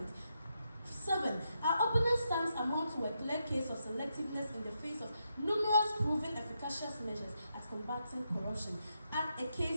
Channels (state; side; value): inverted; both; correlation -0.82